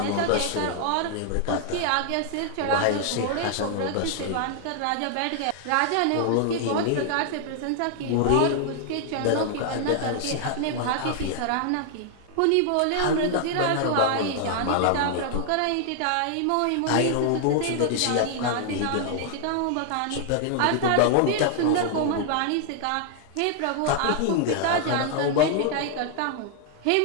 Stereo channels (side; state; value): both; different; correlation 0.00